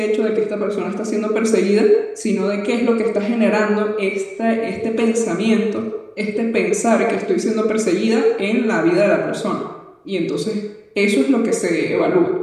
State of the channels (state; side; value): identical; both; correlation 1.00